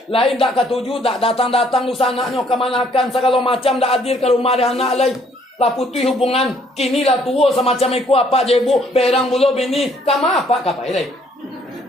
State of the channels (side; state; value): both; normal; correlation 0.65